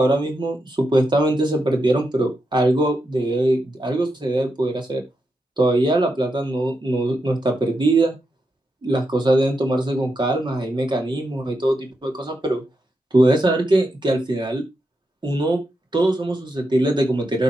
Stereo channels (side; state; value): both; normal; correlation 0.85